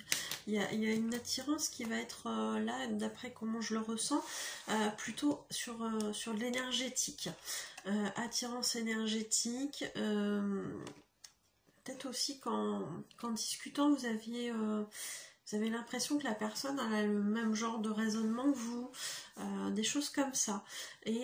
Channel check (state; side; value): identical; both; correlation 1.00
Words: Il y a une attirance qui va être là, d'après comment je le ressens, plutôt sur de l'énergétique. Attirance énergétique, peut-être aussi qu'en discutant, vous avez l'impression que la personne a le même genre de raisonnement que vous, des choses comme ça.